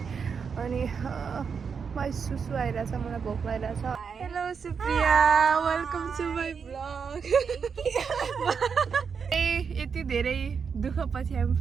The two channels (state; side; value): quieter; left; 6.1 dB